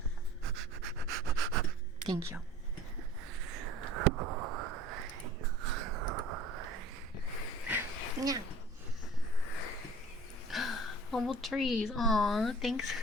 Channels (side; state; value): both; normal; correlation 0.45